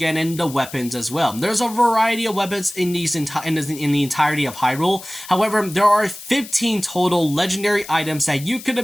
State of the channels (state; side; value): noise; left; hiss, 15 dB below the sound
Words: the weapons as well. There's a variety of weapons in the entirety of Hyrule. However, there are 15 total legendary items that you could